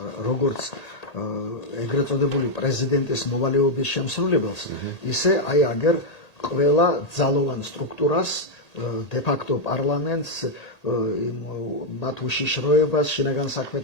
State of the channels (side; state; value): right; late; 1.8 ms